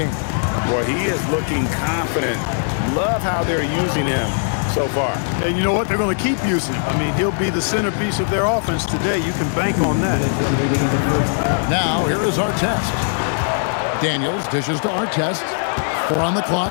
Boy, he is looking confident. Love how they're using him so far. And you know what? They're going to keep using him. I mean, he'll be the centerpiece of their offense today. You can bank on that. Now, here is Artest. Daniels dishes to Artest. 4 on the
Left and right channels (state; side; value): silent; right; 58 dB below the other